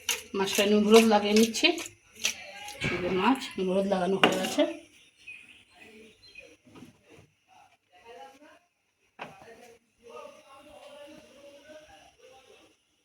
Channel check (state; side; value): identical; both; correlation 1.00